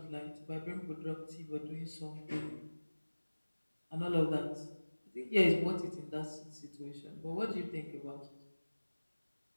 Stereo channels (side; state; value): both; inverted; correlation -1.00